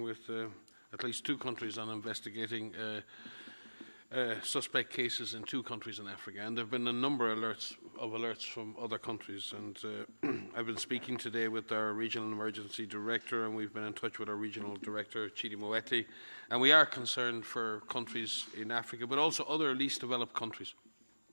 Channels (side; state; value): both; inverted; correlation -1.00